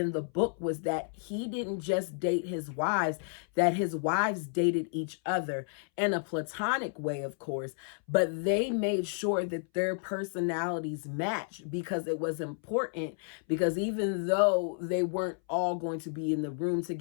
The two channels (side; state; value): right; silent; 57 dB below the other